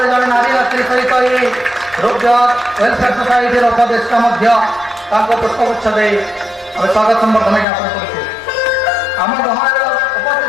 जड़े नारी नेत्री सहित ये रुद्र वेलफेयर सोसाइटी उपदेष्टा पुष्पगुच्छ स्वागत संबर्धना ज्ञापन करुचे। आम गहन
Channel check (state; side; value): drops out; right; at 7.7 s